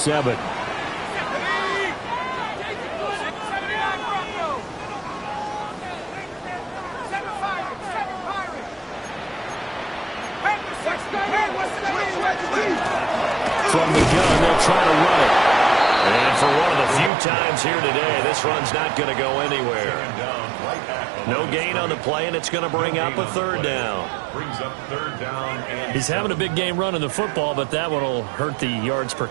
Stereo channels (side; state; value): left; drops out; at 17.1 s